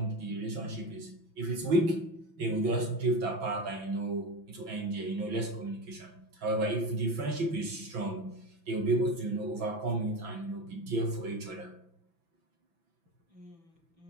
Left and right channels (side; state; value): left; late; 6.0 ms